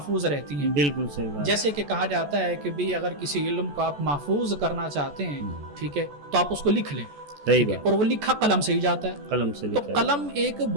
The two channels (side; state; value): left; late; 14 ms